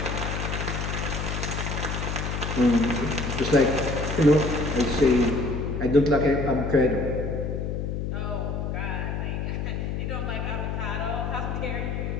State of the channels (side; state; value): left; noise; hum, 2 dB below the sound